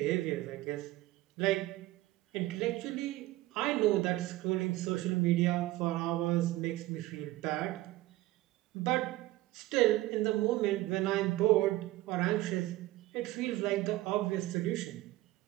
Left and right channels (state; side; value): quieter; left; 17.5 dB